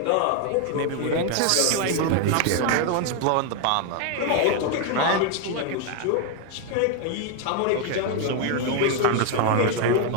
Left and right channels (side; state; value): both; different; correlation 0.00